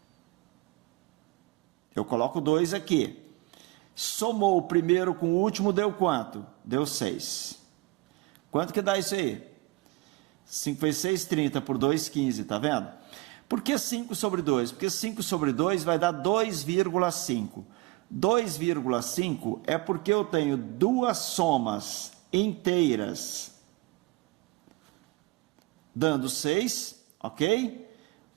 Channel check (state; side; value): quieter; left; 21.7 dB